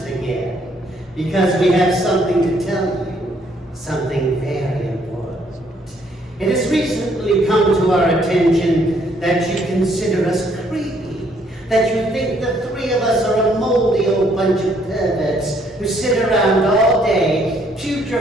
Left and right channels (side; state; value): both; normal; correlation 0.67